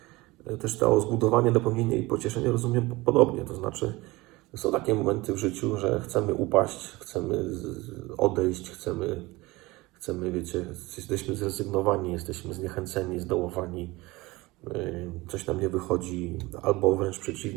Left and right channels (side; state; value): left; quieter; 21.3 dB